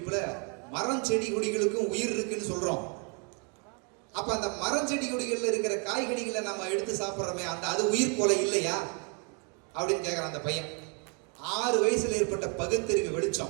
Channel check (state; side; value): quieter; left; 37.8 dB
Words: மரம் செடி கொடிகளுக்கும் உயிர் இருக்குன்னு சொல்றோம். அப்ப அந்த மரம் செடி கொடிகள்ல இருக்கிற காய்கறிகளை நம்ம எடுத்து சாப்பிடுறோமே, அது உயிர் கொலை இல்லையா அப்படின்னு கேட்கிறான் அந்த பையன். 6 வயசுல ஏற்பட்ட பகுத்தறிவு